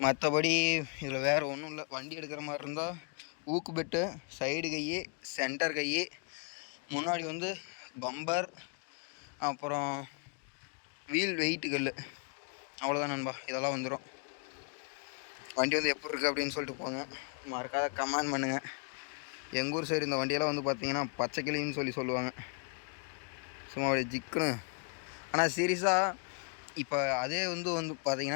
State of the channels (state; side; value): quieter; right; 39.1 dB